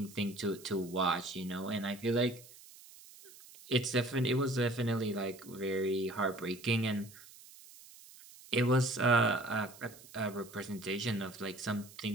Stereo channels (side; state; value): right; noise; hiss, 20 dB below the sound